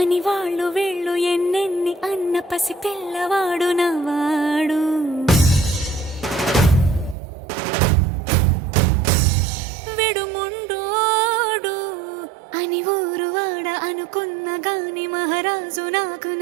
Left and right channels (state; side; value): drops out; left; at 7.2 s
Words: అని వాళ్ళు వీళ్ళు ఎన్నెన్ని అన్న పసి పిల్లవాడు నవ్వాడు. విడుముండోడు అని ఊరు వాడ అనుకున్న గాని మహారాజు నాకు